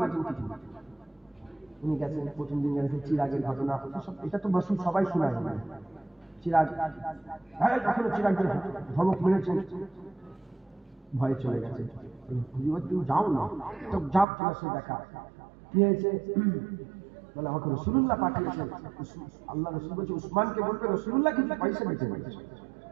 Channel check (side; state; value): left; drops out; at 14.2 s